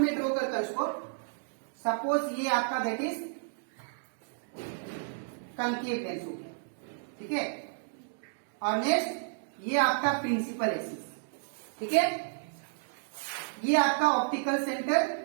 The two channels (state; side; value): silent; left; digital silence